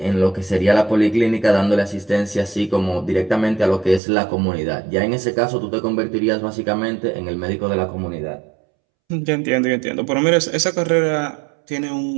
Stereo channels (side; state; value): left; drops out; at 4.0 s